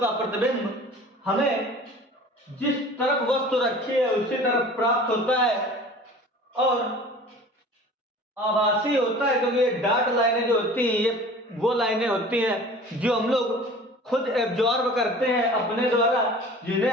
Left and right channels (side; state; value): both; normal; correlation 0.43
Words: प्रतिबिंब हमें जिस तरफ वस्तु रखी है उसी तरफ प्राप्त होता है और आभासी होता है, क्योंकि ये डॉट लाइनें जो होती हैं ये वो लाइनें होती हैं जो हम लोग खुद एब्जॉर्ब करते हैं अपने द्वारा, जिन्हें